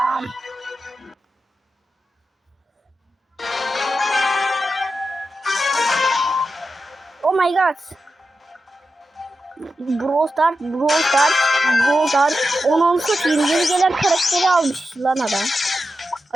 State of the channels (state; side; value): normal; both; correlation 0.90